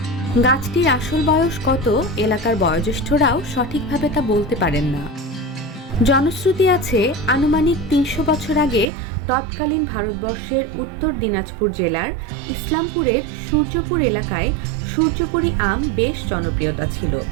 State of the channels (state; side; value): drops out; left; at 8.9 s